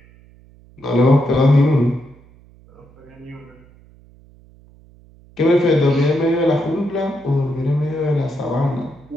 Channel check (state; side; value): noise; right; hum, 26 dB below the sound